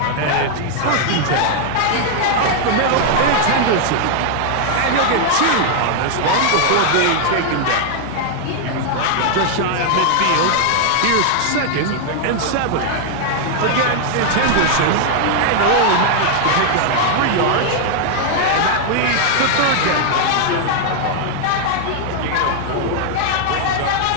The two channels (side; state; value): both; different; correlation 0.00